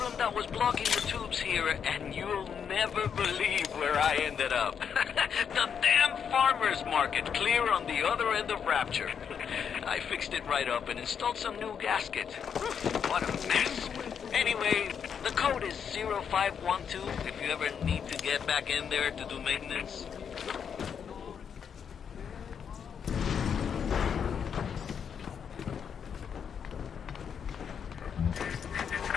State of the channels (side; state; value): right; quieter; 7.4 dB